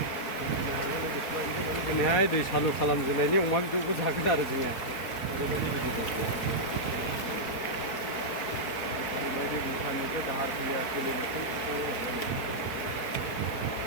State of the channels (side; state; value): right; late; 4.2 ms